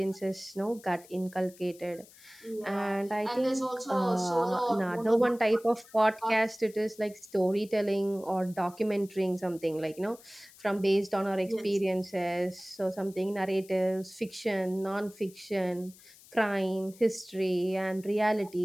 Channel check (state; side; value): noise; left; hiss, 23 dB below the sound